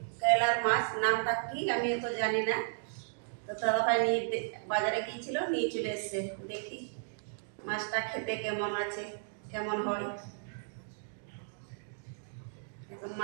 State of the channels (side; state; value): left; silent; digital silence